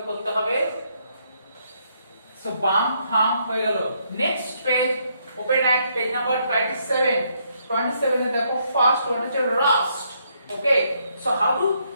করতে হবে so bump hump হয়ে গেল next page open at page number 27 এ দেখো first one হচ্ছে rust okay so how to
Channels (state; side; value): inverted; both; correlation -0.73